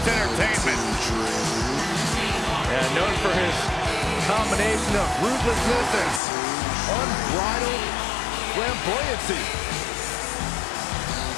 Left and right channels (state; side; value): drops out; right; at 6.2 s